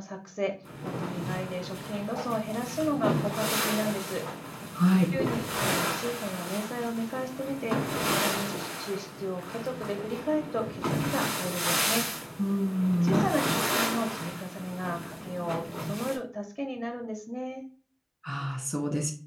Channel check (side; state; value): both; identical; correlation 1.00